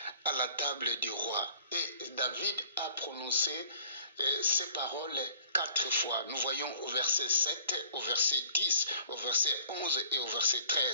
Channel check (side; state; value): both; inverted; correlation -0.53